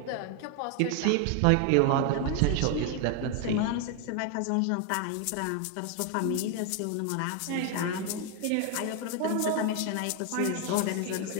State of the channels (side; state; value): both; different; correlation 0.01